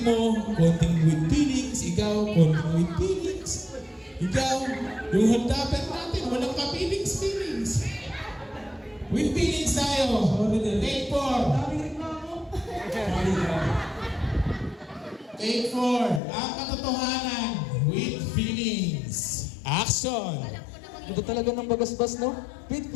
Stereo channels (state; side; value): drops out; right; at 16.2 s